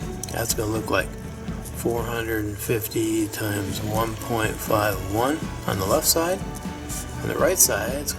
That's going to look like 450 times 1.51 on the left side. On the right side, it's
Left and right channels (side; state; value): both; identical; correlation 1.00